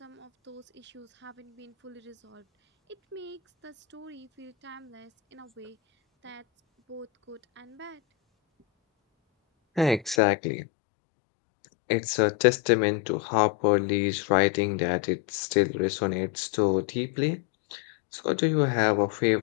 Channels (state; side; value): drops out; right; at 10.2 s